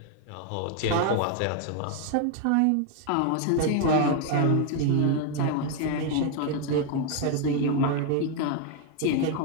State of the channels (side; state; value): both; different; correlation 0.01